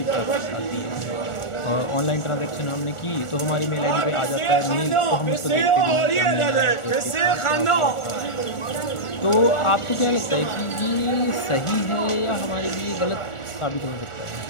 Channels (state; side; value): late; right; 1.4 ms